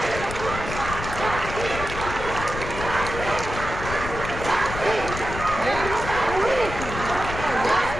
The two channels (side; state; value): left; noise; rumble, 7 dB below the sound